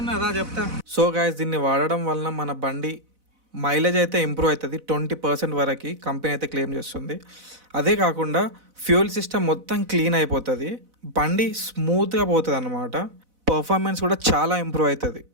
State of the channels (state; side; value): late; left; 4.0 ms